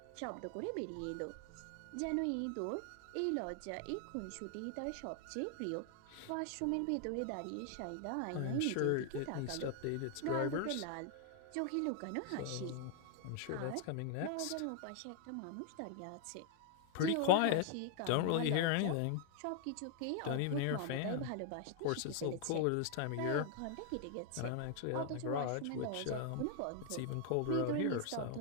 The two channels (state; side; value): different; both; correlation 0.00